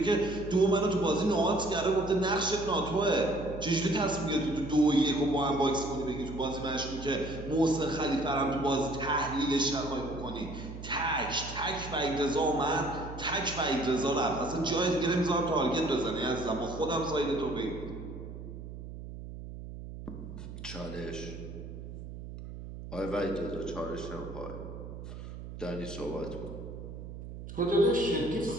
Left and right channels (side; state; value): right; noise; hum, 11 dB below the sound